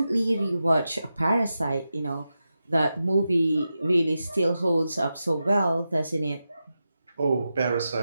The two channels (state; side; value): inverted; both; correlation -0.90